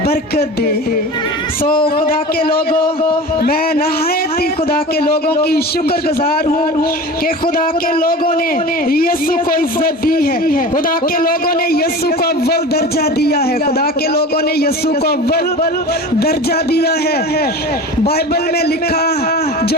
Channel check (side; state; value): both; normal; correlation 0.33